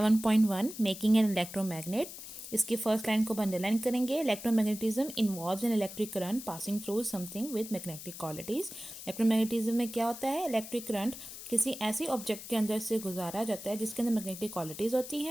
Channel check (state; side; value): noise; left; hiss, 12 dB below the sound